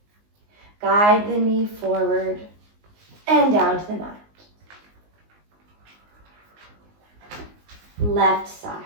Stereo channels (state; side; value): late; left; 19 ms